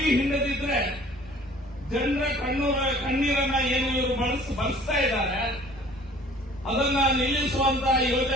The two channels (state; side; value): normal; both; correlation 0.51